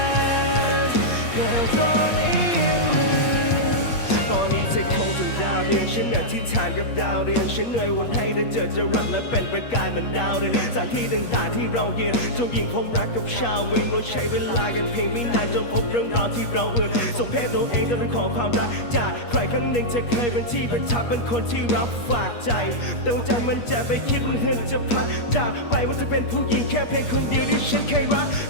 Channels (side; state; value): right; late; 8.4 ms